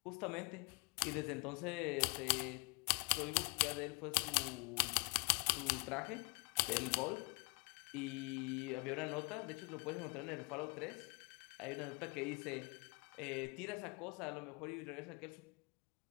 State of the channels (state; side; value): quieter; right; 30.7 dB